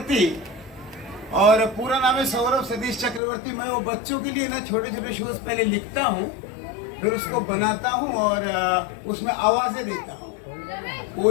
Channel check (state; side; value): drops out; right; at 3.2 s